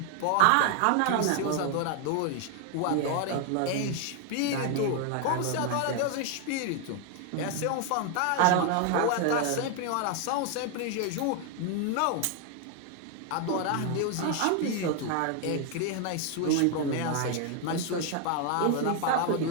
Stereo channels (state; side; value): different; both; correlation 0.00